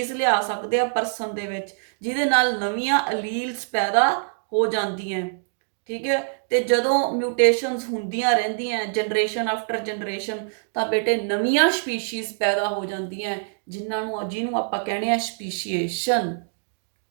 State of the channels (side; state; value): left; silent; digital silence